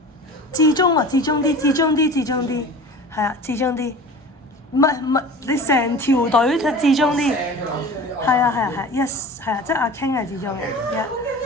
至中啊，至中啲，係啊，至中啲。唔係，你成條隊至中啲。係啊，yes， 係啊，即係阿 King 係至中嘅。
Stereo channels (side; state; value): both; normal; correlation 0.38